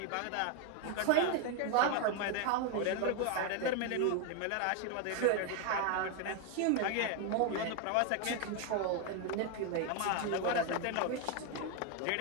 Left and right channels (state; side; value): different; both; correlation 0.01